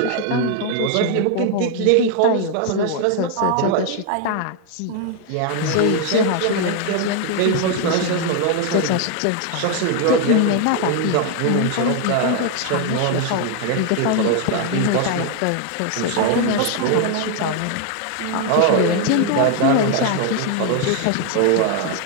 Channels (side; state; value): both; different; correlation 0.00